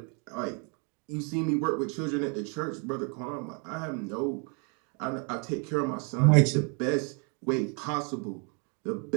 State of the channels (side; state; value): left; quieter; 36.8 dB